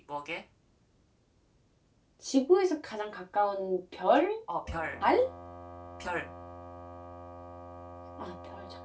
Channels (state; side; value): identical; both; correlation 1.00